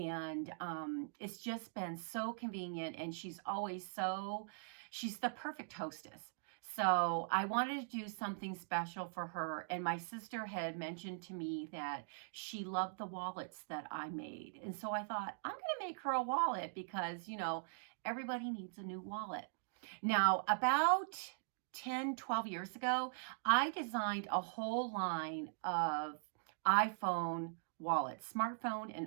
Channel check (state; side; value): silent; left; digital silence